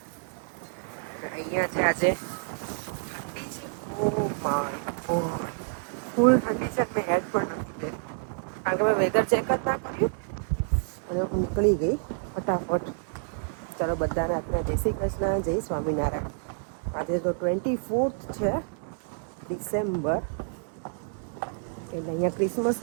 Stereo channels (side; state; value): left; silent; digital silence